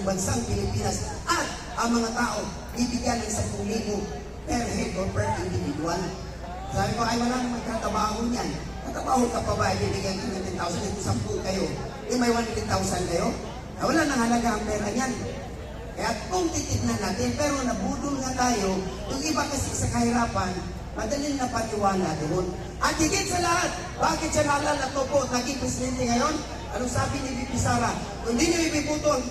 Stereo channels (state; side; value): identical; both; correlation 1.00